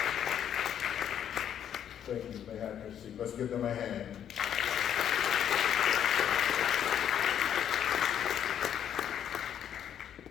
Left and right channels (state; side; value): quieter; right; 9.5 dB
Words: Thank you. They have your seat. Let's give them a hand.